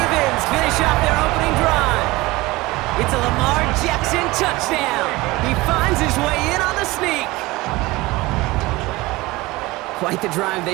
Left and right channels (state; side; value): quieter; left; 20.8 dB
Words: finish off their opening drive. It's a Lamar Jackson touchdown. He finds his way in on the sneak. Quite the drive